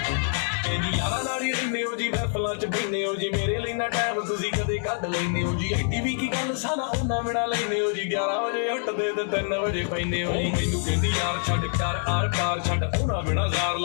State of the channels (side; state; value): right; silent; 59 dB below the other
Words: बहने हो जी मेरे लिए ना टाइम तुसी कदे कढ लैने हो जी एडी भी की गल साना ओना बिना लैने हो जी 11 बजे उठदे ते 3 बजे पैने हो जी मैनू कहंदी यार छड्ड कर आर पार छड्ड ओना बिना जार